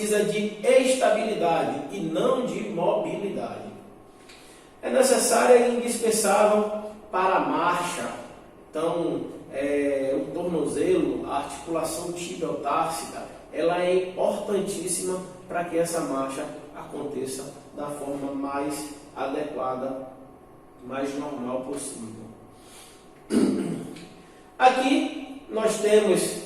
de estabilidade e não de mobilidade. É necessária e indispensável para a marcha. Então, o tornozelo, a articulação tibiotársica, ela é importantíssima para que essa marcha aconteça da forma mais adequada, mais normal possível. Aqui nós temos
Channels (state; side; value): identical; both; correlation 1.00